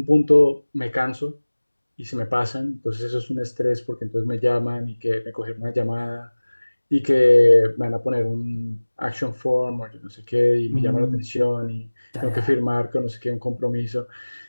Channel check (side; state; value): both; inverted; correlation -1.00